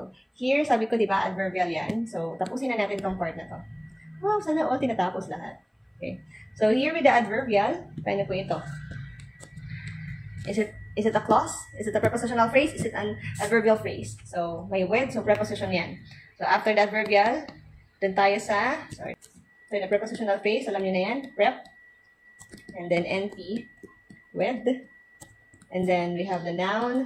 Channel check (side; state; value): both; identical; correlation 1.00